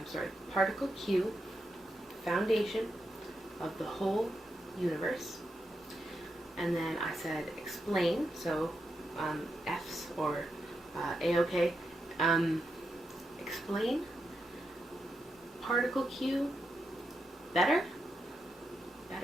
Sorry. Particle Q, foundation of the whole universe. And then I said explain. So, F's or A-OK. Explain particle Q better?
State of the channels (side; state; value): both; normal; correlation 0.85